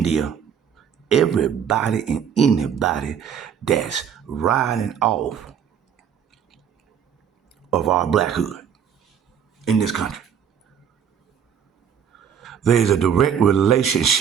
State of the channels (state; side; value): quieter; left; 8.1 dB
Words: everybody and anybody that's riding off of our blackhood in this country. There's a direct